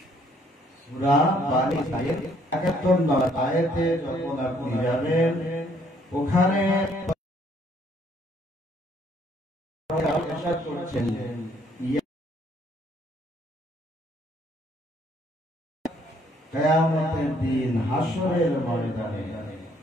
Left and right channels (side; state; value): both; normal; correlation 0.65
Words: সূরা বানী ইসরাঈল 71 নম্বর আয়াতে যখন আপনি যাবেন, ওখানে ইরশাদ করছেন কিয়ামতের দিন হাসরের ময়দানে